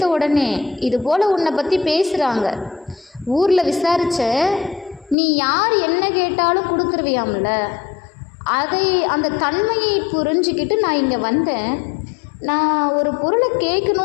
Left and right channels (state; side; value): drops out; right; at 5.2 s